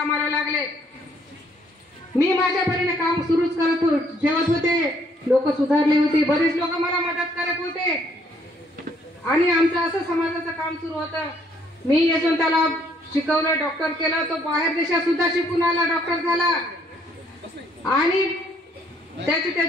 लागले. मी माझ्या परीने काम सुरूच ठेवत होते. लोक सुधारले होते, बरेच लोक मला मदत करत होते आणि आमचं असं समाजाचं काम सुरू होतं. मी यशवंताला शिकवलं, डॉक्टर केलं. तो बाहेर देशात सुद्धा शिकून आला, डॉक्टर झाला आणि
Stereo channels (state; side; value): normal; both; correlation 0.66